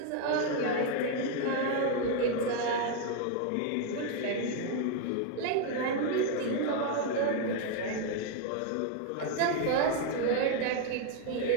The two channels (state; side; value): different; both; correlation 0.00